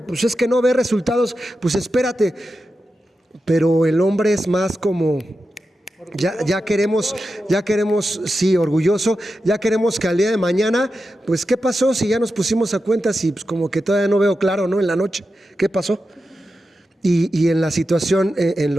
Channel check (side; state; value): both; normal; correlation 0.90